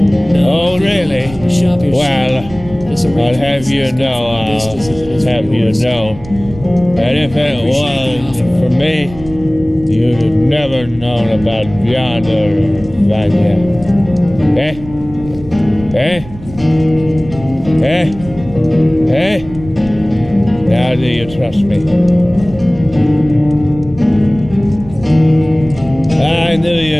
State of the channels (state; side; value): noise; right; rumble, 16 dB below the sound